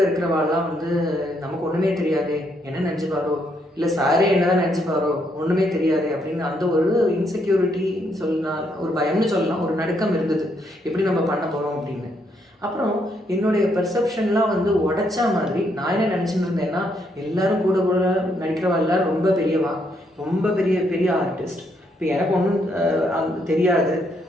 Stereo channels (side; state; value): both; normal; correlation 0.74